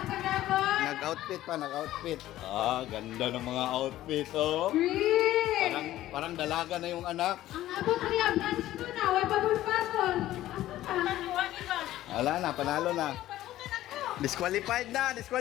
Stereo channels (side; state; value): right; quieter; 14.4 dB